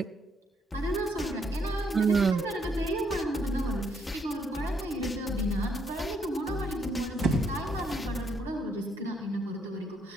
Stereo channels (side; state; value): both; normal; correlation 0.72